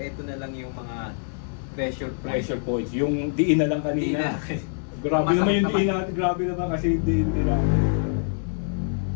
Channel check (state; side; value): silent; right; 62 dB below the other